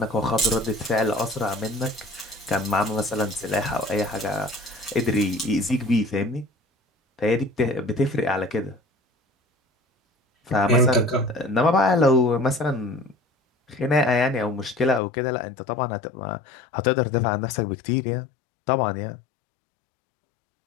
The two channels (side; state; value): right; drops out; at 15.0 s